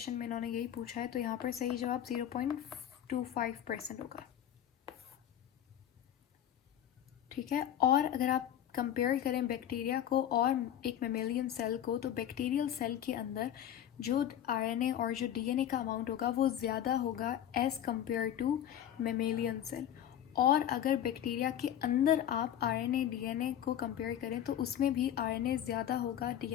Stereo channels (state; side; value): quieter; right; 10.7 dB